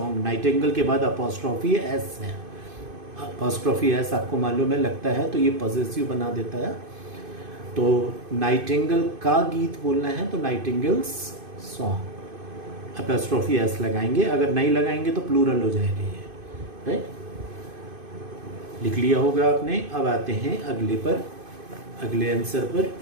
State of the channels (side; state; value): left; late; 2.5 ms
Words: Nightingale के बाद अपॉस्ट्रॉफी एस है। अपॉस्ट्रॉफी एस आपको मालूम है, लगता है तो ये पॉजेसिव बना देता है। तो नाइटिंगेल का गीत बोलना है तो नाइटिंगेल्स सॉन्ग, अपॉस्ट्रॉफी एस लगाएंगे। अगर नहीं लगाएंगे तो प्लूरल हो जाएगा ये, राइट। लिख लिया होगा आपने। अब आते हैं अगले आंसर पर,